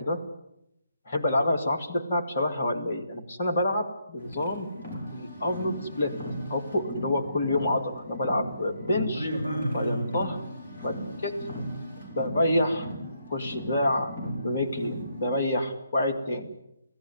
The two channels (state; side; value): inverted; both; correlation -0.75